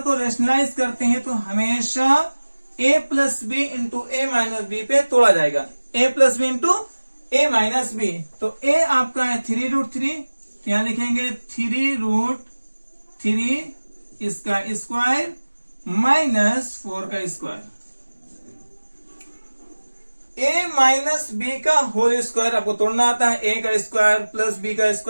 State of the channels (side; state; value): both; inverted; correlation -1.00